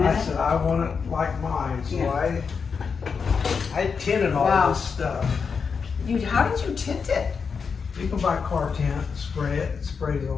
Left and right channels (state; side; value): quieter; right; 5.7 dB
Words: I it? said I want it like mine, so Yeah. I tinted all Wow. this stuff. How did you tint it? You can buy car tint, spray it, it sprays